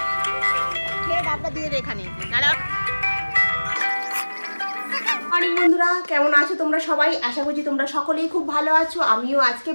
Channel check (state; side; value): inverted; both; correlation -1.00